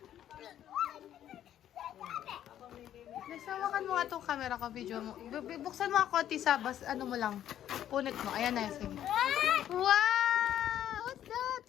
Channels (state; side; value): quieter; right; 11.1 dB